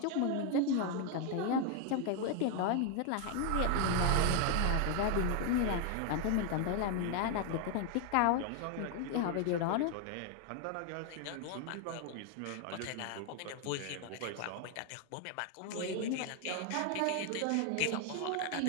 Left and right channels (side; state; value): both; different; correlation 0.00